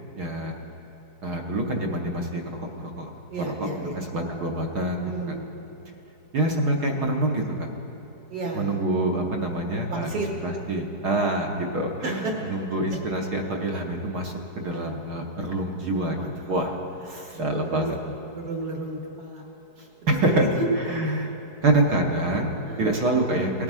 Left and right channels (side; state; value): left; late; 4.7 ms